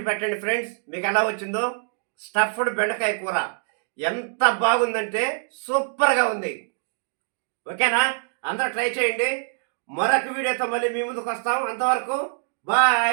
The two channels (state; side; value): silent; left; digital silence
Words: పెట్టండి ఫ్రెండ్స్, మీకు ఎలా వచ్చిందో. స్టఫ్డ్ బెండకాయ కూర ఎంత బాగుందంటే సూపర్గా ఉంది. ఓకేనా? అందరూ ట్రై చేయండి. మరొక వీడియోతో మళ్ళీ మీ ముందుకు వస్తాం. అంతవరకు